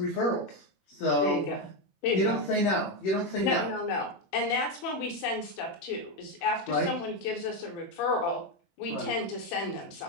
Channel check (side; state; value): right; late; 21 ms